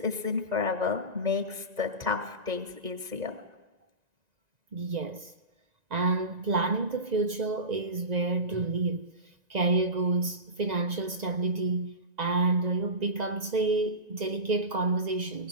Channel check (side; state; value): left; late; 1.9 ms